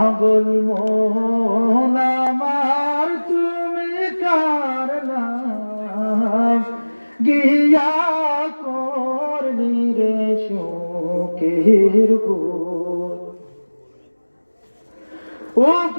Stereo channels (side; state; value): both; inverted; correlation -1.00